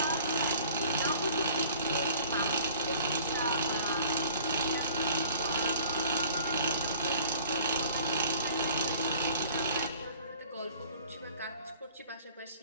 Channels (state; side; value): inverted; both; correlation -0.51